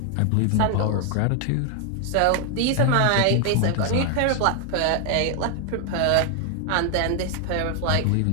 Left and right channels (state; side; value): different; both; correlation 0.00